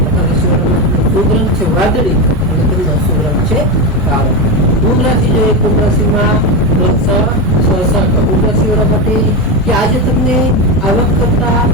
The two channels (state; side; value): normal; both; correlation 0.15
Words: મકર રાશિવાળા માટેનો શુભ રંગ છે વાદળી અને તેમનો અશુભ રંગ છે કાળો. કુંભ રાશિ જોઈએ, કુંભ રાશિમાં કુંભ રાશિવાળા માટે કે આજે તમને આવક કરતા